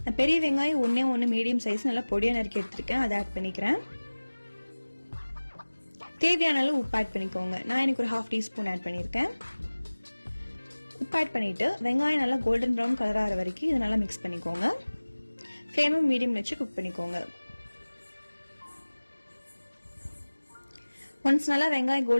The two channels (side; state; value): both; inverted; correlation -1.00